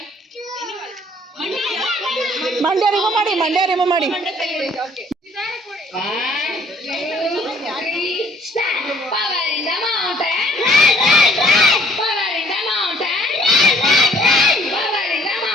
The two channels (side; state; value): both; normal; correlation 0.59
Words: ಮಂಡ್ಯ ರಿಮೂವ್ ಮಾಡಿ.